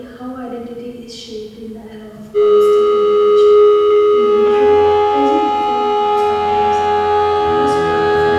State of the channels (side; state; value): both; identical; correlation 1.00